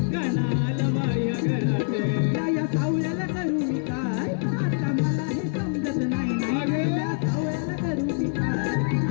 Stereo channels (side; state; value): right; silent; digital silence